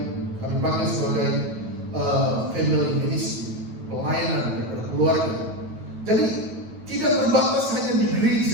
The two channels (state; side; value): late; left; 9.1 ms